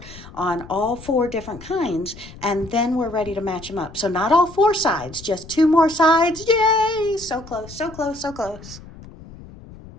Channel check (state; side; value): noise; left; rumble, 17 dB below the sound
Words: on all 4 different kinds, and then we're ready to match them up. So not all 4 sides, just 2 more sides. Yay! So close, so close, so close.